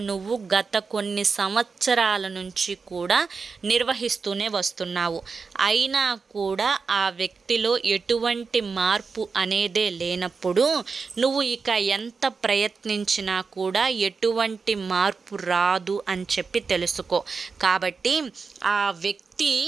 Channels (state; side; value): quieter; left; 4.9 dB